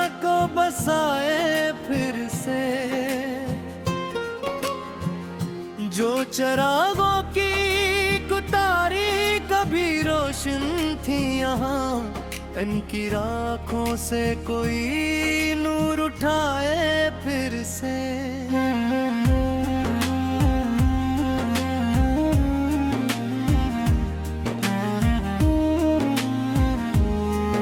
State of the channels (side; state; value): both; identical; correlation 1.00